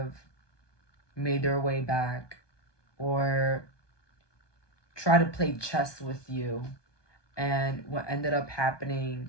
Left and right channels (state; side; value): late; right; 1.2 ms